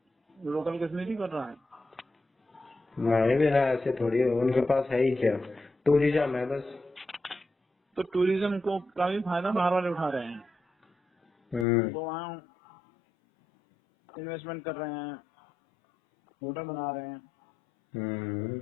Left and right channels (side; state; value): right; drops out; at 11.7 s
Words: लोकल कश्मीरी कर रहा है? नहीं भी ना, ऐसे थोड़ी है, उनके पास है ही क्या, टूरिज्म है बस। तो टूरिज्म को का भी फायदा बाहर वाले उठा रहे हैं, वो वहाँ इन्वेस्टमेंट कर रहे हैं, होटल बना रहे हैं,